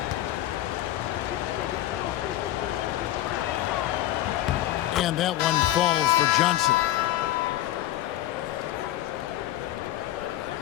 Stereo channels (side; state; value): right; quieter; 14.1 dB